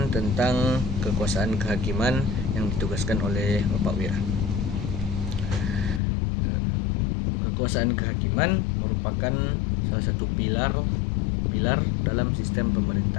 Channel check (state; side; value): drops out; right; at 6.0 s